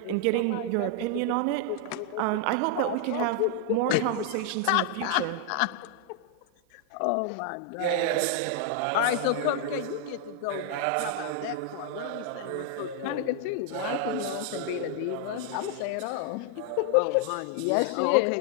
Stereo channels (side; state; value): both; different; correlation 0.00